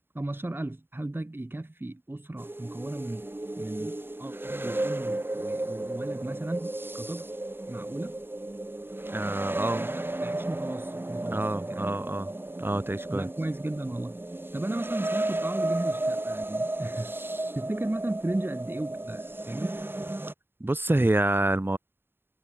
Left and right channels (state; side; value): late; left; 0.11 ms